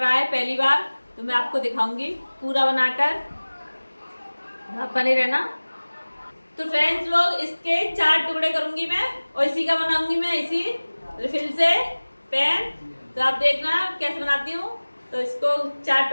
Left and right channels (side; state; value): both; inverted; correlation -1.00